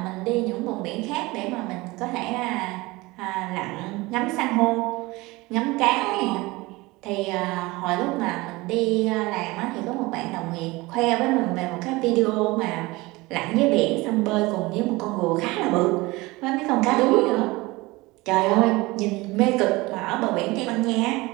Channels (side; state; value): left; quieter; 21.9 dB